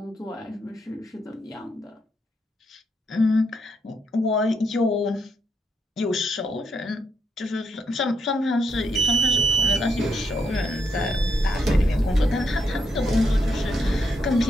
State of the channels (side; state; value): both; normal; correlation 0.78